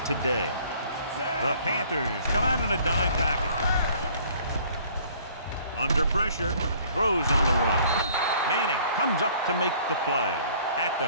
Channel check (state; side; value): inverted; both; correlation -0.56